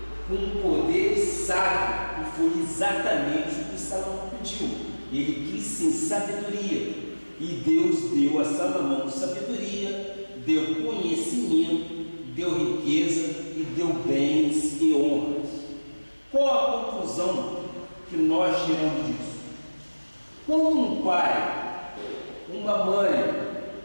com poder sábio, e foi exatamente o que Salomão pediu. Ele quis sim sabedoria, e Deus deu a Salomão sabedoria, deu conhecimento, deu riqueza e deu bens e honras. Qual a conclusão que nós tiramos disso? Como um pai, uma mãe,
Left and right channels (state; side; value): inverted; both; correlation -1.00